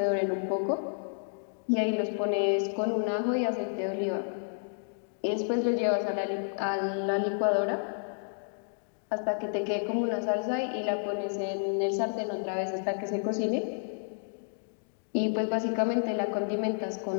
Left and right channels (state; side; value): silent; right; digital silence